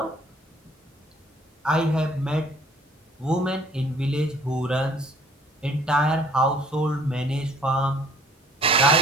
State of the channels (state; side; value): normal; both; correlation 0.56